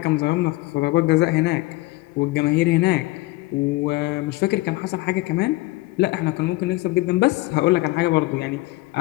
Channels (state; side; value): quieter; right; 20.9 dB